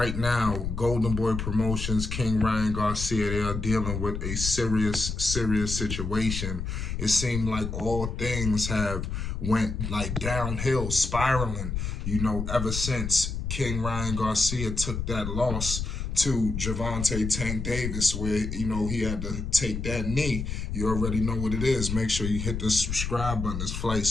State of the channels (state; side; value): noise; left; rumble, 4 dB below the sound